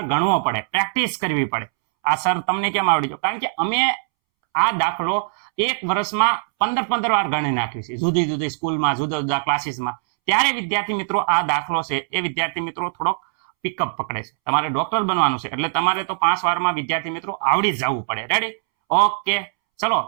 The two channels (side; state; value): left; silent; 65 dB below the other